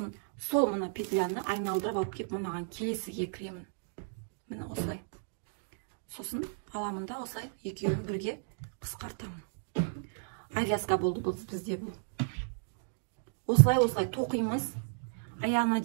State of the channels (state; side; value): silent; left; digital silence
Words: сол мына петляны айналдырып алып кеп, мынаған келесіге кіремін. Міне осылай. Сосын аламын да осылай екеуін бірге қысқартамын. Авязка болды бұл бізде бұл. Осылай тоқимыз. Аяғына